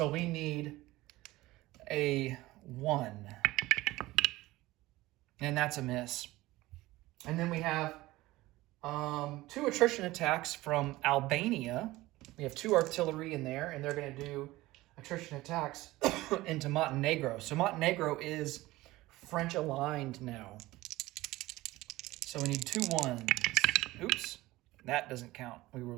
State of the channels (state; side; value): quieter; left; 18.4 dB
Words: we need a 1. And that's a miss. And then we have 2 attrition attacks from Albania. We have 2 artillery in there, and they're going to do attrition attacks into Montenegro. So Montenegro is French aligned now. So we need 2 ones. Oops, that doesn't count. We will